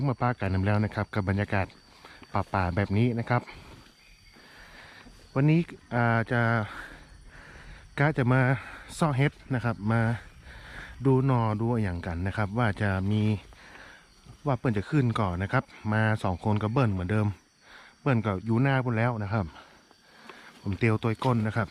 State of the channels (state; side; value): identical; both; correlation 1.00